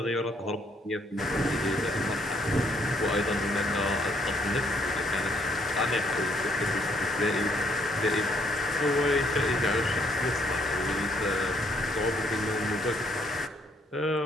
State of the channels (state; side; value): normal; both; correlation 0.69